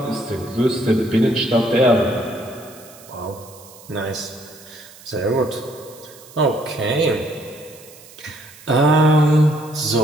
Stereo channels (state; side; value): noise; right; hiss, 21 dB below the sound